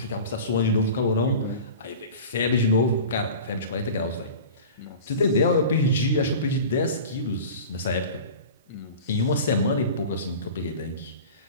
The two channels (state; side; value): inverted; both; correlation -0.36